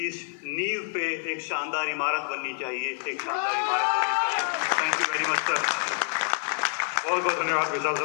इस नींव पे एक शानदार इमारत बननी चाहिए, एक शानदार इमारत बननी चाहिए। Thank you very much sir. बहुत बहुत धन्यवाद विशाल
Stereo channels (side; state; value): right; silent; digital silence